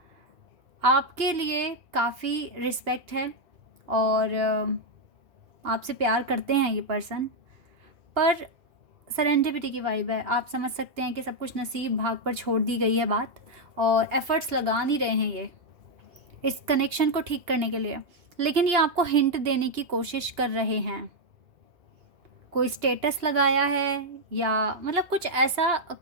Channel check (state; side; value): late; left; 2.8 ms